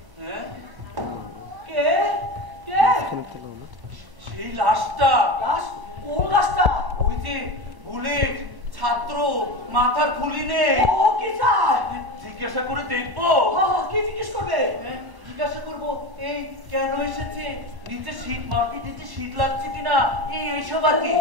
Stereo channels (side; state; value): left; late; 1.1 ms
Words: কে কে? সেই লাশটা। লাশ? কোন লাশটা? ওই যে বুলেট ছাত্র, মাথার খুলি নেই। ও কি চায়? জিজ্ঞাসা করে দেখবো। কি জিজ্ঞেস করবে? জিজ্ঞাসা করবো এই কেন এসেছে, নিচে শীত, মাটির নিচে শীত লাগছে কিনা, এইসব আর কি।